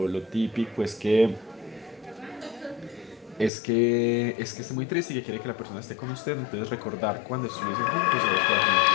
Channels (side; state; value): right; drops out; at 3.5 s